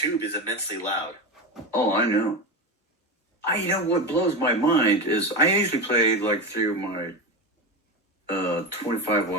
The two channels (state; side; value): normal; both; correlation 0.19